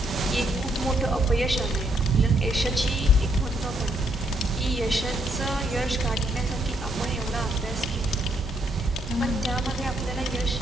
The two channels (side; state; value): both; normal; correlation 0.73